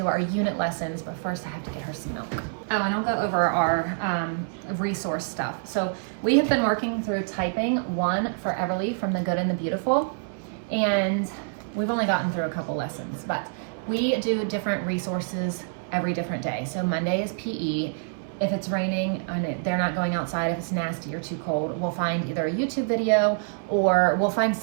our unit lessons, but first I have to get her some milk. Oh, and I'll go over our resource stuff. So we have been working through typing 1 for Everly from The Good and the Beautiful, and we've only gotten through a couple lessons, but we do different resources every different day. So Monday is PE. If it's raining and they're not going outside, if it's nasty or too cold, we'll find either a YouTube video or we'll find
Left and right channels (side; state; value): left; silent; digital silence